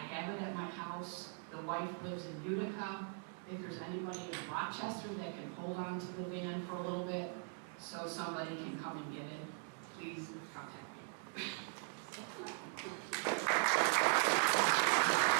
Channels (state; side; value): silent; left; 51 dB below the other